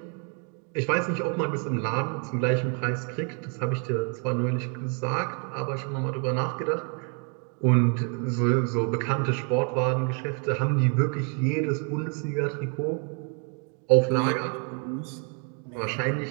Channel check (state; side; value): quieter; left; 39.7 dB